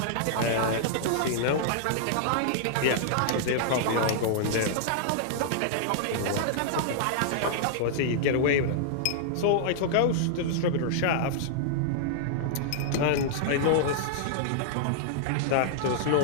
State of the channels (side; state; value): both; different; correlation -0.01